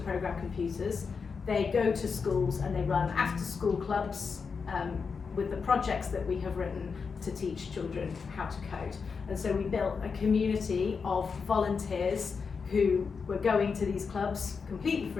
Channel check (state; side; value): quieter; right; 5.4 dB